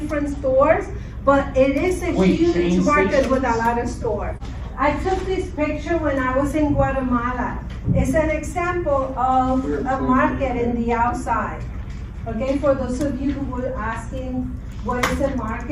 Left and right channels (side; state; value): both; identical; correlation 1.00